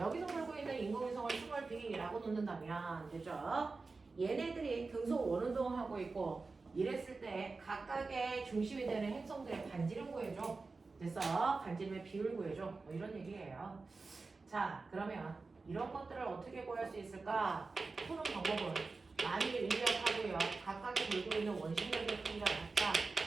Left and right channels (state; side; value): quieter; left; 4.0 dB